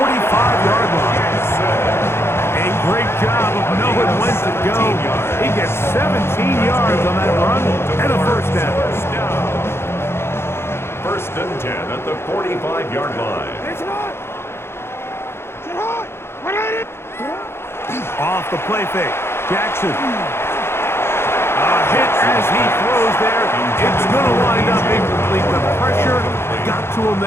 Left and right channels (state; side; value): late; right; 0.12 ms